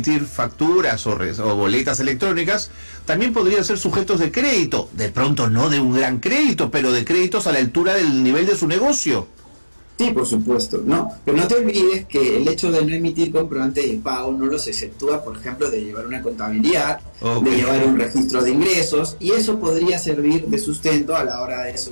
facturas o boletas electrónicas, también podrían ser sujetos de crédito, de pronto no de un gran crédito, pero de créditos a la altura del nivel de su negocio. Sí, por supuesto, no, pero no te olvides que el hecho de no emitir comprobante de pago no los exceptúa, por ejemplo, de llevar una contabilidad, de llevar un registro de ingresos, y eso podría servir de sustento a la hora de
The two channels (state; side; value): inverted; both; correlation -1.00